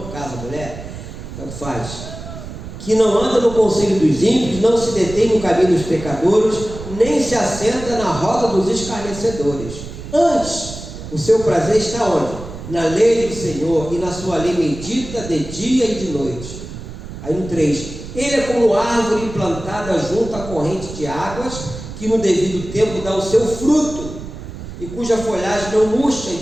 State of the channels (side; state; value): right; noise; rumble, 11 dB below the sound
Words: caso a mulher, tanto faz, que não anda no conselho dos ímpios, não se detém no caminho dos pecadores, nem se assenta na roda dos escarnecedores. Antes, o seu prazer está onde? Na lei do Senhor, e na sua lei medita de dia e de noite. Aí no 3, ele é como árvore plantada junto à corrente de águas, que no devido tempo dá o seu fruto, e cuja folhagem não murcha,